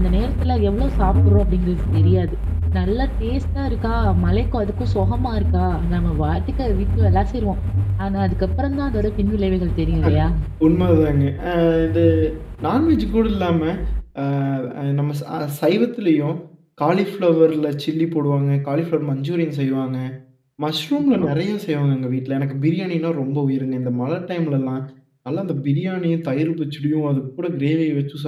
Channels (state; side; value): identical; both; correlation 1.00